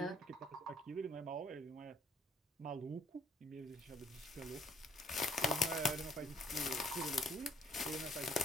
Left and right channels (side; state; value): both; normal; correlation 0.63